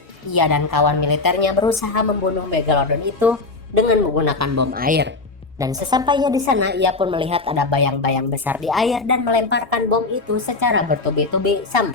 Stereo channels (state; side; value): quieter; right; 3.6 dB